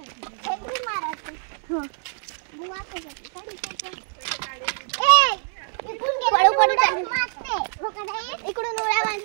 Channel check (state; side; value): silent; left; digital silence